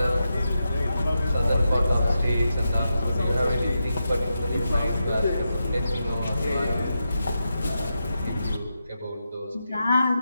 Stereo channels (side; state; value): both; inverted; correlation -0.88